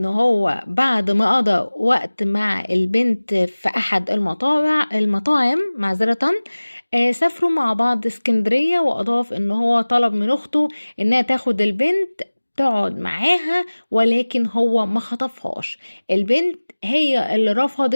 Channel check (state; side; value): inverted; both; correlation -1.00